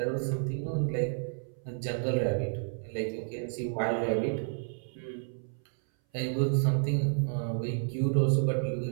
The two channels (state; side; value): silent; left; 57 dB below the other